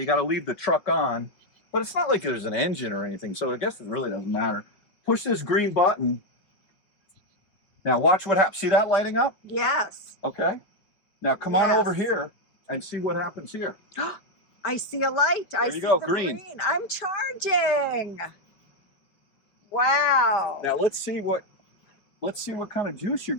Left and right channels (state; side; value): late; right; 5.4 ms